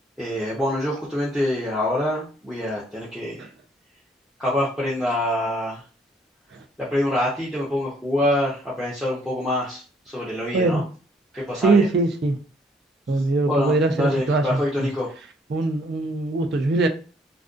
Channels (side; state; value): both; normal; correlation 0.64